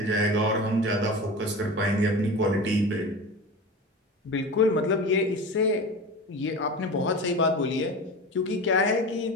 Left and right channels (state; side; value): normal; both; correlation 0.30